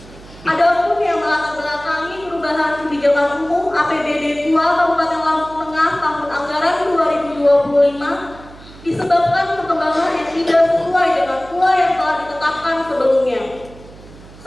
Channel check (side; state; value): right; noise; hum, 20 dB below the sound